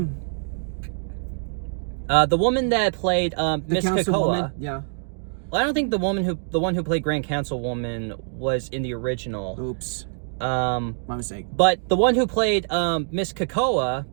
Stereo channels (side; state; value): left; silent; digital silence